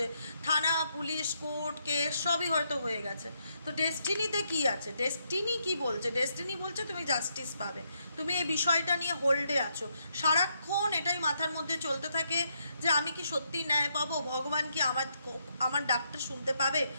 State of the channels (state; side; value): inverted; both; correlation -0.77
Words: থানা পুলিশ কোর্ট কেস সবই হয়তো হয়ে গেছে। তো ডেস্টিনিতে কি আছে, ডেস্টিনি কি বলছে, ডেস্টিনি বলছে তুমি জাস্টিস পাবে, তুমি এই বিষয়টা নিয়ে হোল্ডে আছো, সারাক্ষণ এটাই মাথার মধ্যে চলতে থাকে যে আমি কি সত্যি ন্যায় পাবো, ভগবান কি আমার ডাকটা শুনতে পাবে,